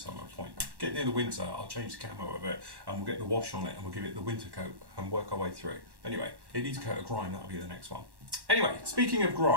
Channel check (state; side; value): late; left; 1.1 ms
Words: point. Get near the winter, I'll change the camo of it and we'll get the wash on it and we'll give it the winter coat and work our way through. Anyway, it needs a coat of grime, that'll be the next one. Anyway, speaking of